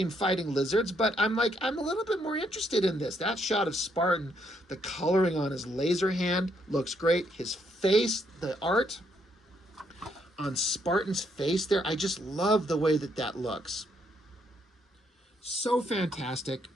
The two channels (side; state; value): both; normal; correlation 0.73